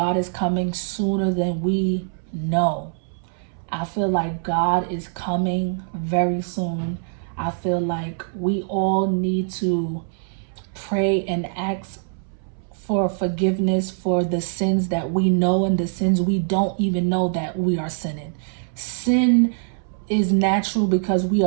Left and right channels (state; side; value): silent; left; 63 dB below the other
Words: is coming sooner than we know. I feel like God is coming very soon. I feel like we all need to pray and ask for forgiveness for the sins that we know and the sins we don't even know that we are sinning. Sin is natural because we